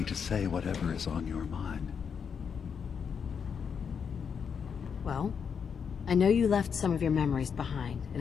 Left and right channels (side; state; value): right; quieter; 6.7 dB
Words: to say whatever is on your mind. Well, I know you left some of your memories behind